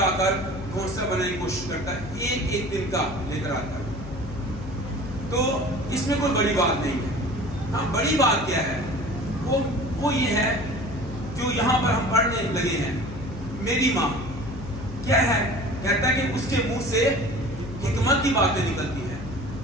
آ کر گھونسلہ بنانے کی کوشش کرتا ہے، ایک دن کا لے کر آتا ہے۔ تو اس میں کوئی بڑی بات نہیں ہے۔ ہاں، بڑی بات کیا ہے؟ وہ یہ ہے جو یہاں پر ہم پڑھنے لگے ہیں، میری ماں کیا ہے؟ کہتا ہے کہ اس کے منہ سے حکمت کی باتیں نکلتی ہیں۔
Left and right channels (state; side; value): noise; left; hum, 11 dB below the sound